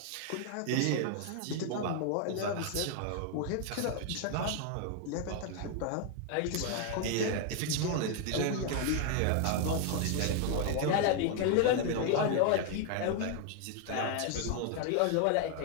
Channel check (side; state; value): both; different; correlation 0.00